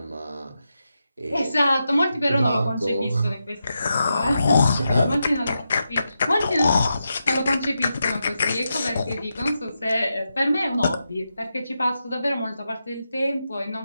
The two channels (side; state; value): both; inverted; correlation -0.87